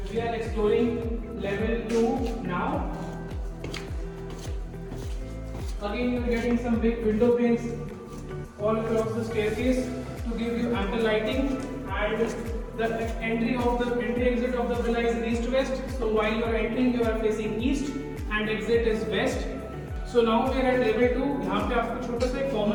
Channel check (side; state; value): both; identical; correlation 1.00